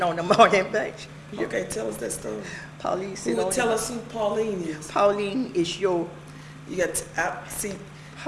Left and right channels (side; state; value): both; identical; correlation 1.00